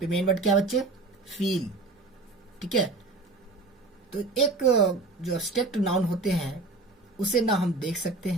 मेन वर्ड क्या बच्चे? फील। ठीक है, तो एक जो एब्स्ट्रैक्ट नाउन होते हैं उसे ना हम देख सकते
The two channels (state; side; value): quieter; left; 3.4 dB